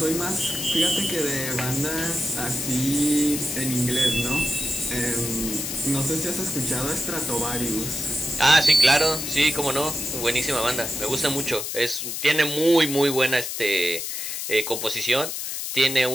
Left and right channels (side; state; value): left; noise; hiss, 4 dB below the sound